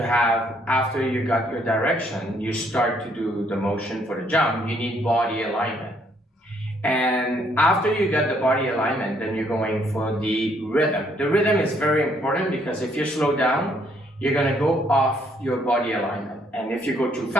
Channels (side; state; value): both; normal; correlation 0.68